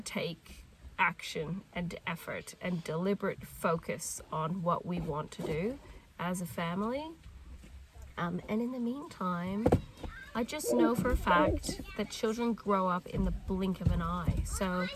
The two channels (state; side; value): identical; both; correlation 1.00